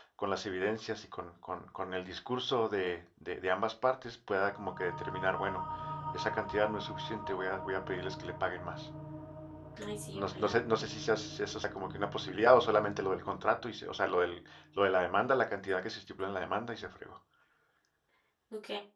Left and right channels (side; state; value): both; identical; correlation 1.00